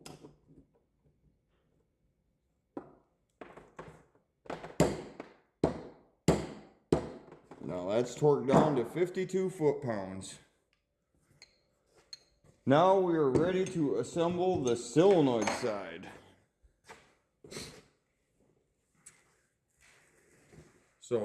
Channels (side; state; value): both; identical; correlation 1.00